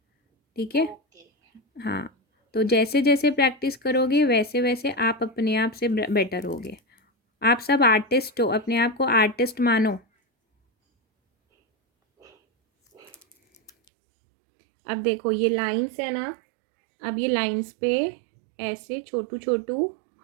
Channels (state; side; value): drops out; left; at 13.7 s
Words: ठीक है। ओके। हाँ, तो जैसे जैसे प्रैक्टिस करोगे वैसे वैसे आप अपने आप से बेटर होगे। आप सब आर्टिस्ट हो, अपने आप को आर्टिस्ट मानो। अब देखो ये लाइंस है ना, अब ये लाइंस पे ऐसे छोटू छोटू